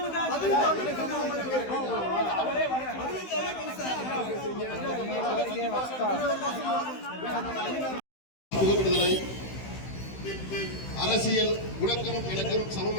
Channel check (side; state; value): right; late; 15 ms